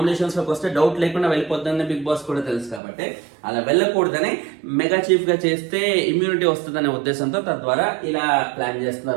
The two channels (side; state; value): left; drops out; at 2.8 s